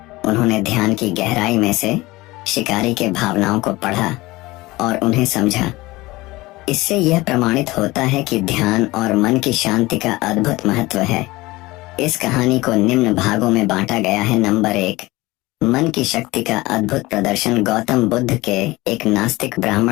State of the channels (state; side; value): quieter; right; 20.4 dB